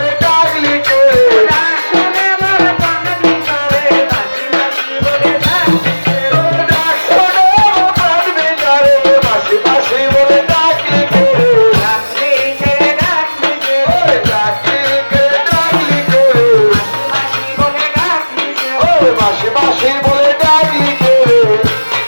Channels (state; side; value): inverted; both; correlation -1.00